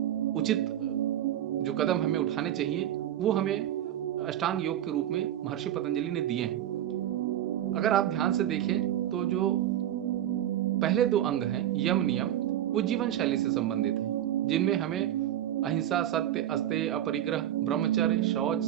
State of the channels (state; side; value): quieter; left; 11.8 dB